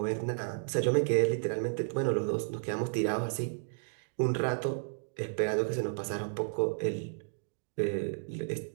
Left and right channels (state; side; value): silent; left; digital silence